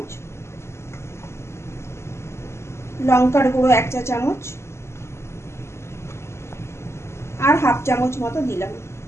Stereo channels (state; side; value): late; right; 0.13 ms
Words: লঙ্কার গুঁড়ো 1 চা চামচ আর হাফ চামচ মতো দিলাম।